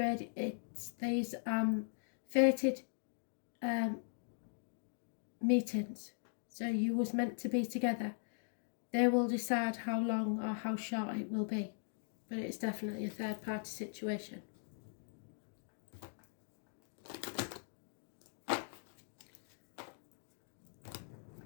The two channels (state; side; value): silent; right; digital silence